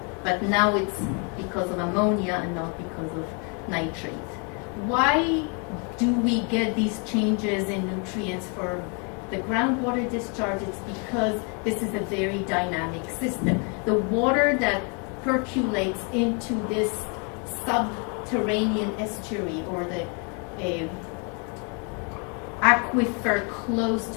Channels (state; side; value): quieter; right; 36.3 dB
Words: But now it's because of ammonia and not because of nitrate. Why do we get these changes in nutrients for the groundwater discharge? It's because this is a very dynamic system. The water that percolates into this subterranean estuary, or the aquifer close